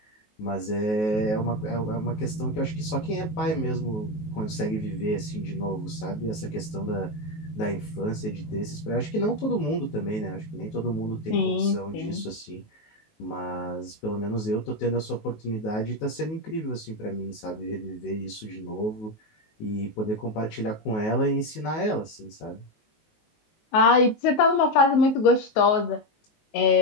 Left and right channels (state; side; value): late; right; 19 ms